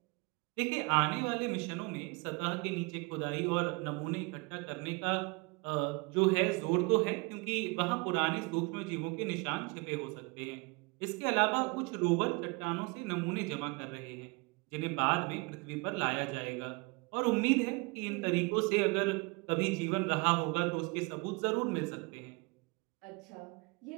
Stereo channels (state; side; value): quieter; left; 28.5 dB